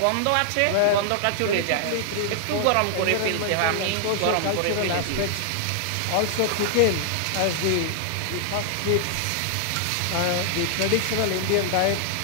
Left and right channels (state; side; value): different; both; correlation 0.00